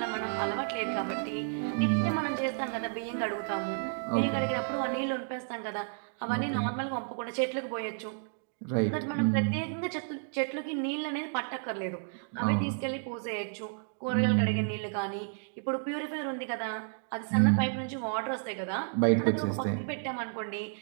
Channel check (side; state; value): left; silent; digital silence